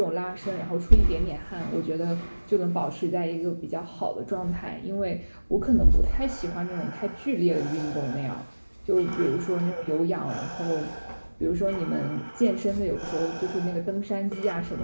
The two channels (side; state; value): both; inverted; correlation -1.00